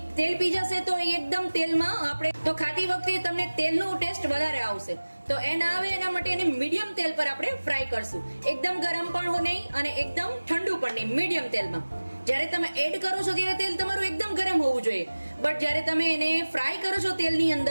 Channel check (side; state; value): both; inverted; correlation -1.00